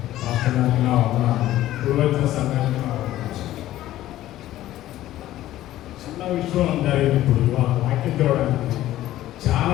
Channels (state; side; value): quieter; right; 14.3 dB